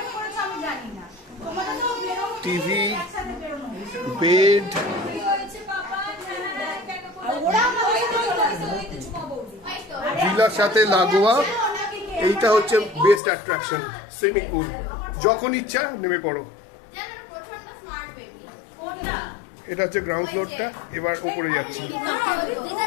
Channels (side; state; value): right; drops out; at 13.2 s